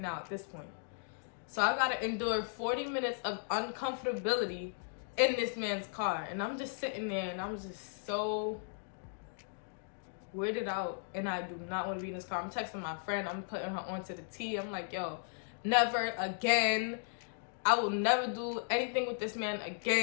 at this point. So I gotta endure 40 minutes of uncomfortability in this man's car. And I'm just sitting there and I'm just so weirded out. And I do not want to be in this car. I'm texting my friend. I'm putting her onto the T. I'm like, yo, never again. I will never do anything with this man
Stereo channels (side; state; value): right; silent; digital silence